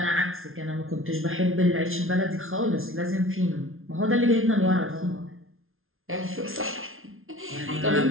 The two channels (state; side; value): late; left; 0.61 ms